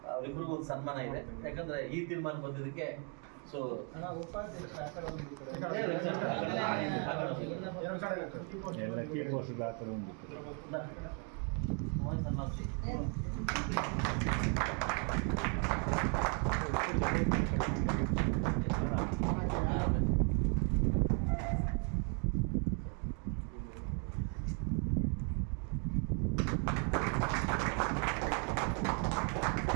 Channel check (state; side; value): quieter; left; 38.4 dB